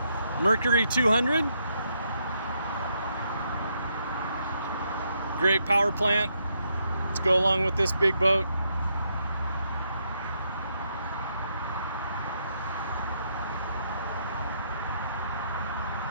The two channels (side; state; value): both; inverted; correlation -0.77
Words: Mercury 200. Great power plant to go along with this big boat.